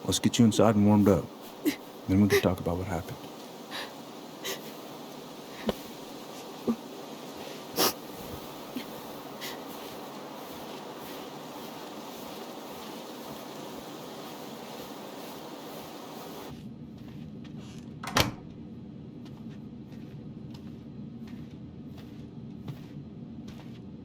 Let's get you inside and warmed up. Then we can talk about what happened.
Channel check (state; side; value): identical; both; correlation 1.00